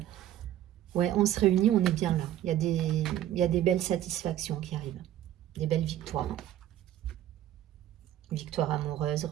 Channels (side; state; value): left; quieter; 12.2 dB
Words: ouais, on se réunit, on est bien là. Il y a des belles satisfactions qui arrivent, des belles victoires. Victoires amoureuses,